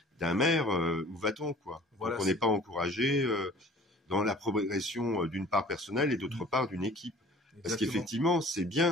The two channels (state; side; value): normal; both; correlation 0.48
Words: d'un maire, où va-t-on, quoi? Voilà, donc on n'est pas encouragé dans la progression d'une part personnelle et d'autre part d'une équipe. Parce exactement. qu'effectivement, c'est